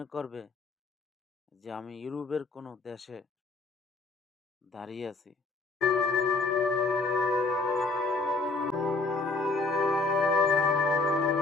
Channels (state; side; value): quieter; right; 3.6 dB